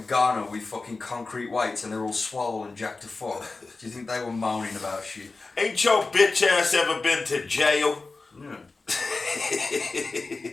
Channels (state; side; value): quieter; right; 3.7 dB